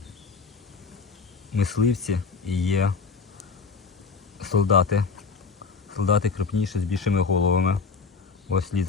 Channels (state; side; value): quieter; right; 5.0 dB